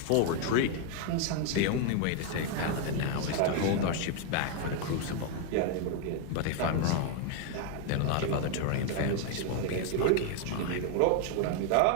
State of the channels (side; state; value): both; different; correlation 0.01